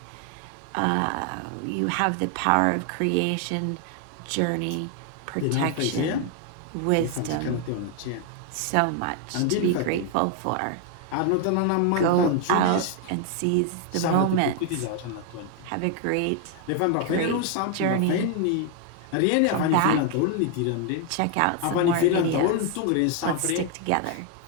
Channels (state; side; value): different; both; correlation 0.00